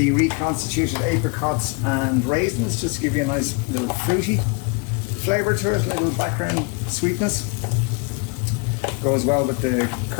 reconstituted apricots and raisins, just to give you a nice little fruity flavour to it, a little background sweetness. Goes well with the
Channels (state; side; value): quieter; right; 30.2 dB